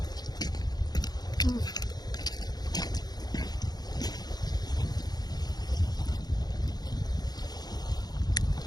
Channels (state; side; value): late; right; 0.19 ms